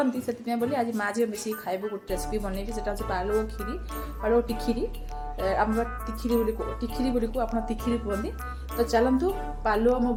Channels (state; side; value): identical; both; correlation 1.00